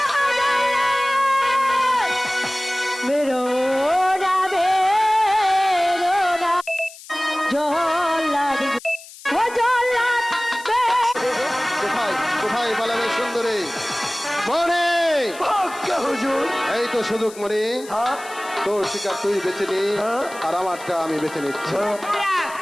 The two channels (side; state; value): left; noise; hiss, 18 dB below the sound